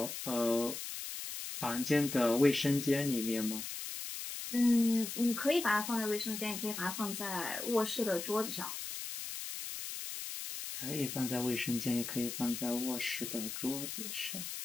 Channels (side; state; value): left; noise; hiss, 6 dB below the sound